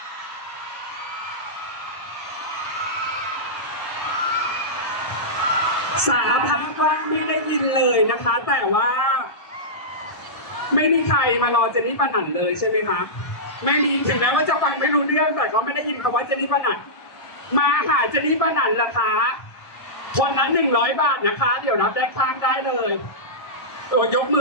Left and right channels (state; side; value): late; right; 1.6 ms